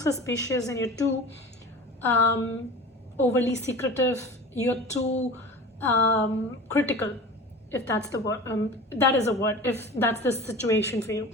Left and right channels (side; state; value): both; normal; correlation 0.36